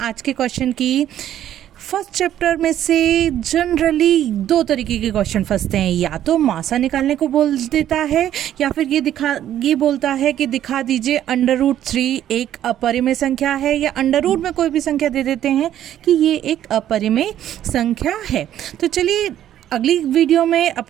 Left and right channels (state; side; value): quieter; left; 11.5 dB